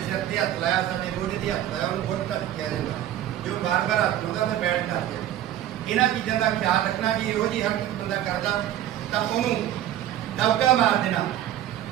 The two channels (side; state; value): left; quieter; 12.1 dB